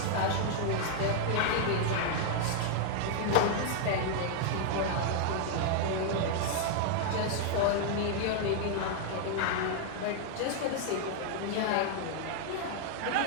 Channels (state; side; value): different; both; correlation 0.00